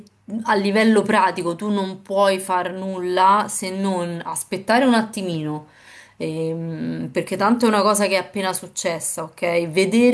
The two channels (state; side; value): identical; both; correlation 1.00